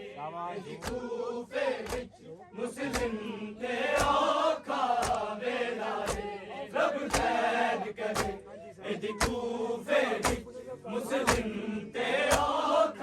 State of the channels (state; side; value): identical; both; correlation 1.00